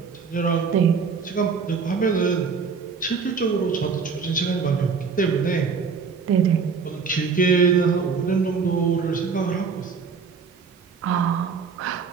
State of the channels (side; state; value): left; quieter; 5.5 dB